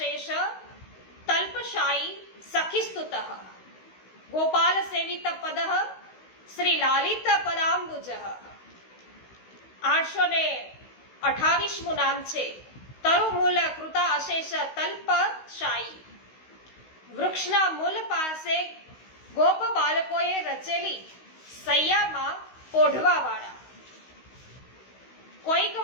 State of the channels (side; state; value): right; late; 16 ms